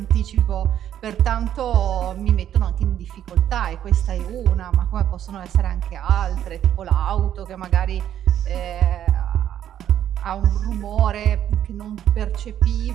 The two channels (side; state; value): left; quieter; 10.6 dB